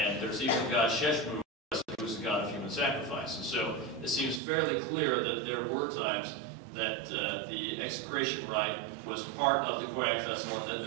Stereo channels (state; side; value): drops out; left; at 4.4 s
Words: there's even God Sheshmu, who is the god of human sacrifice. And so it seems fairly clear that there were times that the execration rite was part of the Khoiak festival, and that